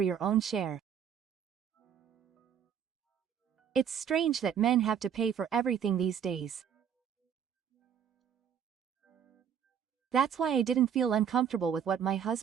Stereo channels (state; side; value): quieter; left; 8.3 dB